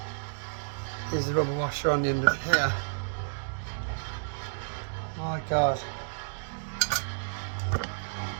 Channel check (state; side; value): silent; left; digital silence